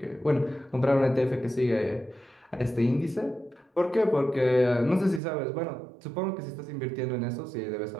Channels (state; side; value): drops out; left; at 5.2 s